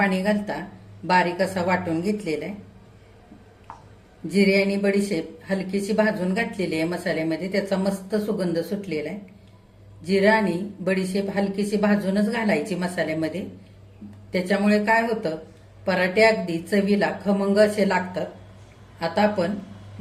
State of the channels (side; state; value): both; identical; correlation 1.00